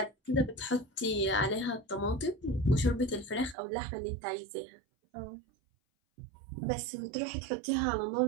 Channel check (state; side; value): drops out; left; at 3.6 s